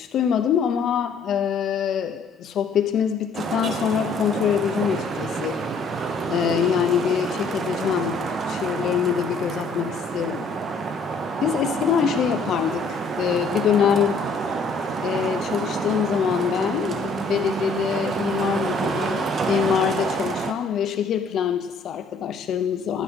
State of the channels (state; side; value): quieter; right; 4.1 dB